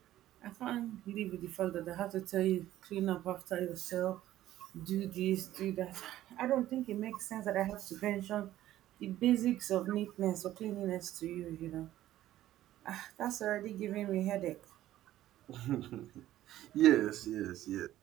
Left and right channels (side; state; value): left; quieter; 13.8 dB